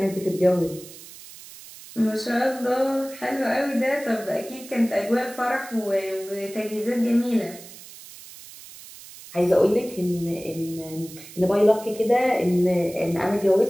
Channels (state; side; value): noise; right; hiss, 17 dB below the sound